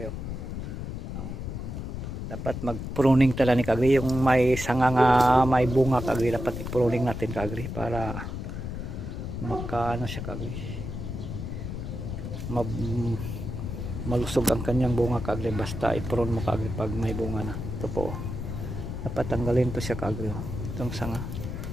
Dapat mag-pruning talaga ni kagri yung may sanga nga may bunga kagri, dapat i-pruning natin kagri para makaano siya kagri, malusog ang kanyang bunga kagri, basta i-prune mo kagri pag may bunga na. Ito po, dapat tanggalin to siya kagri, itong sanga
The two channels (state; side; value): noise; left; rumble, 6 dB below the sound